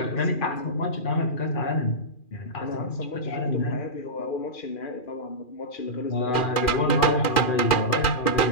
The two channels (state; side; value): late; right; 2.4 ms